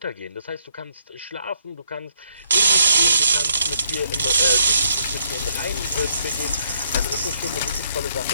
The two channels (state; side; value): inverted; both; correlation -0.72